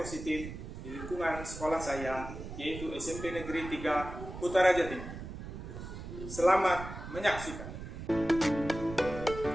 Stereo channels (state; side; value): noise; right; rumble, 10 dB below the sound